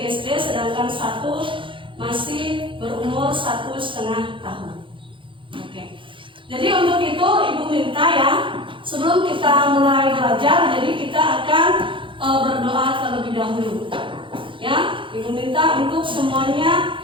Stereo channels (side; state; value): left; late; 0.25 ms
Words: SD, sedangkan 1 masih berumur 1,5 tahun. Oke. Jadi untuk itu Ibu minta ya, sebelum kita mulai belajar, jadi kita akan berdoa terlebih dahulu. Ya, Ibu minta untuk